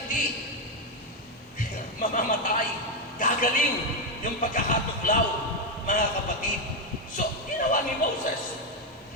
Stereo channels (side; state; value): both; normal; correlation 0.06